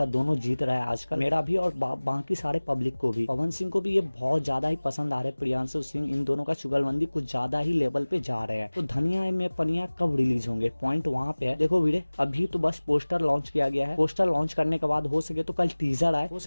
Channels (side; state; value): both; inverted; correlation -1.00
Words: दोनों जीत रहा है आजकल, मेरा भी और बाकी सारे पब्लिक को भी। पवन सिंह को भी ये बहुत ज्यादा ही पसंद आ रहे हैं। प्रियांशु सिंह, इन दोनों का चुगलबंदी कुछ ज्यादा ही लेवल पे जा रहे हैं। तो धनिया में पनिया कब रिलीज होंगे, पॉइंट वहां पे है। देखो वीरे, अभी तो बस पोस्टर लॉन्च किया गया है। पोस्टर लॉन्च करने के बाद हो सके तो कल टीजर आए, हो